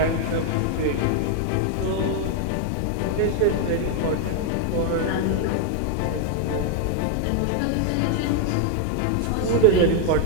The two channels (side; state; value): both; different; correlation 0.00